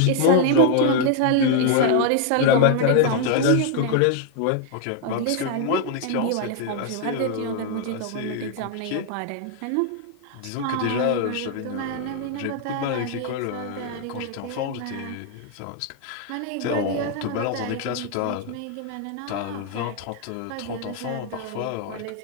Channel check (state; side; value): different; both; correlation 0.00